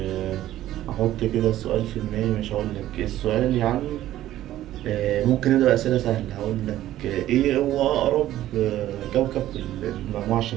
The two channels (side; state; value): left; quieter; 13.7 dB